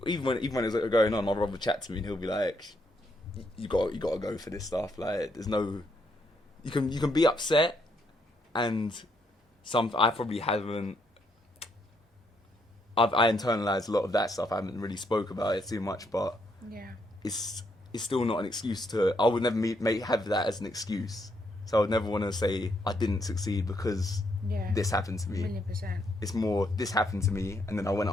when it was going on, my brother would chat to me and he'll be like, "You got to go for this stuff. Like, there's no, you can be upset, and I probably haven't. I internalized a lot of that stuff. I haven't really spoke about it too much, but Yeah. it's still not an excuse to. I would never have that as an excuse. So I would never want to say I didn't succeed because this happened to me. 1,000,000%. It's more this happened to me, and then I went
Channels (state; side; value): normal; both; correlation 0.75